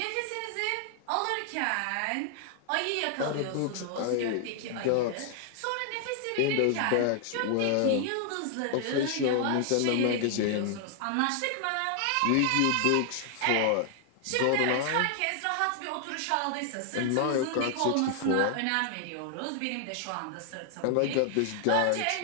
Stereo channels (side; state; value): both; different; correlation 0.00